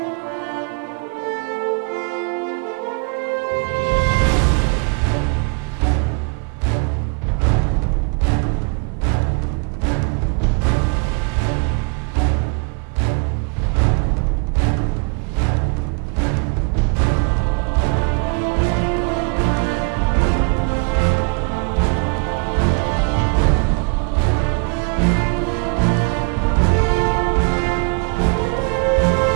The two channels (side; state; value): left; quieter; 34.8 dB